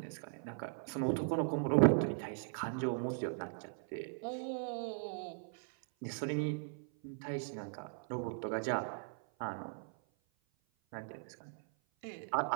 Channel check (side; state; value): left; silent; 52 dB below the other